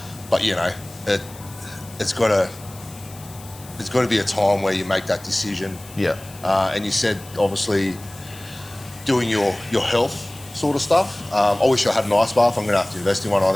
But, it's got to be a time where you make that decision. And you said, obviously, doing your health sort of stuff. I wish I had an ice bath. I'm going to have to invest in one, I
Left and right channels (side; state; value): left; noise; hiss, 20 dB below the sound